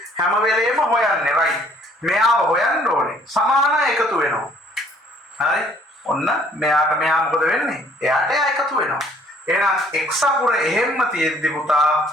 හැම වෙලේම හොයන්නේ. right? මෙයාව හොයන්න ඕනේ. සමානයි එකතු වෙනවා. හරි? ඔන්න මෙයාට මෙයා මොකද වෙන්නේ? එයාට එයා එකතු වෙනවා. එහෙනම් x අකුර එහෙම්ම තියෙද්දි පුතා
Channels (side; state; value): both; normal; correlation 0.60